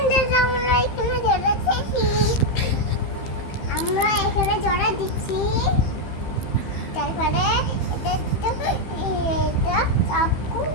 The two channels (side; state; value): right; late; 15 ms